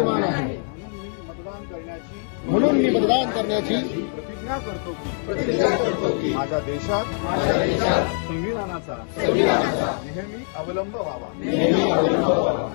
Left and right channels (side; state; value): right; silent; 59 dB below the other